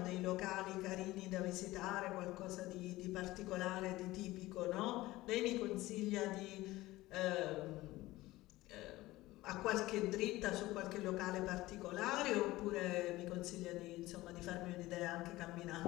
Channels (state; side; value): quieter; right; 18.2 dB